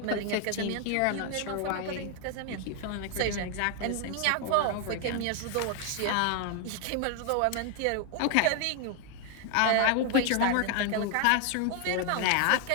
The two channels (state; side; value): different; both; correlation 0.00